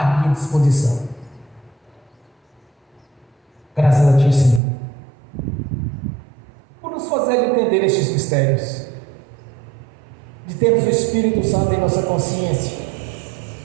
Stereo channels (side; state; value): left; drops out; at 4.6 s